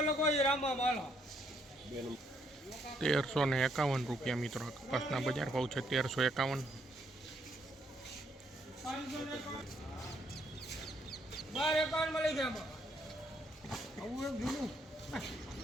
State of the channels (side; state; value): both; normal; correlation 0.71